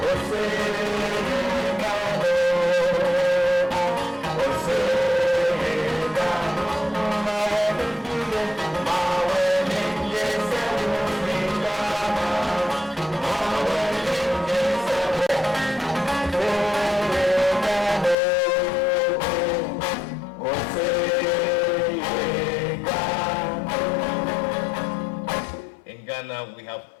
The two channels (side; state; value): right; drops out; at 18.2 s